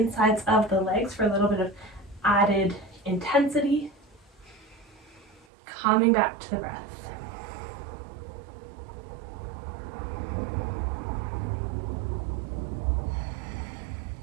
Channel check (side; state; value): left; drops out; at 5.5 s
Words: of the legs for a little bit of added intensity. Coming back to the breath.